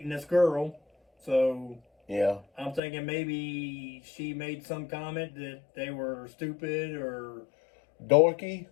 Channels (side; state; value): right; drops out; at 2.8 s